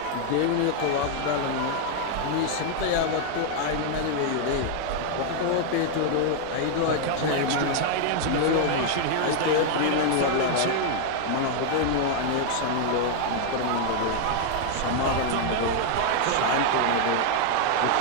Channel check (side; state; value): both; different; correlation 0.00